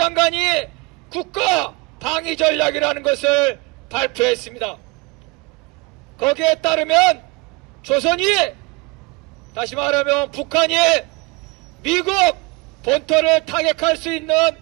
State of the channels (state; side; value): quieter; left; 26.2 dB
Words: 국가 방위 전략이라는 것을 발표했습니다. 거기에 따르면 조선이, 다시 말하면 북한이 미국 본토를 타격할 수 있는